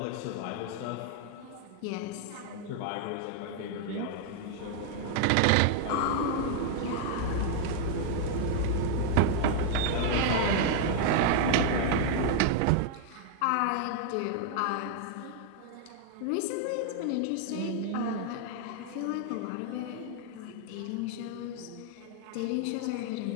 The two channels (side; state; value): both; different; correlation 0.00